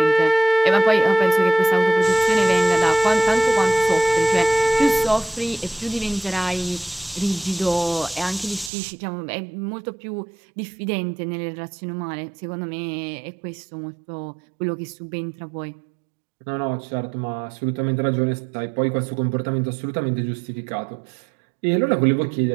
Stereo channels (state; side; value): drops out; left; at 8.7 s